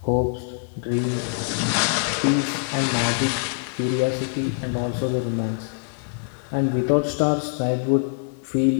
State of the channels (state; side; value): silent; right; digital silence